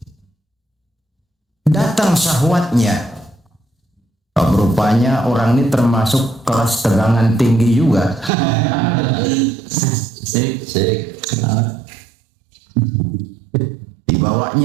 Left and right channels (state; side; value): drops out; left; at 8.3 s